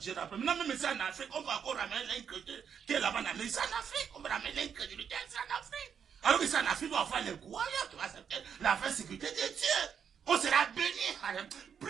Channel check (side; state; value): left; quieter; 7.5 dB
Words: rappelle. Maintenant, même ici en Afrique, on va encore ramener l'incrédulité qui est là-bas en Amérique. Ici en Afrique, on va ramener l'incrédulité ici en Afrique. Alors qu'ici en Afrique, on va avoir les croyants qui vont accepter la vraie sécurité de Dieu. On sera béni.